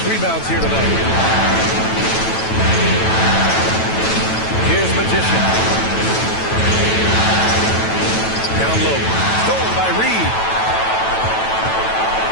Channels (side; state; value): right; late; 9.1 ms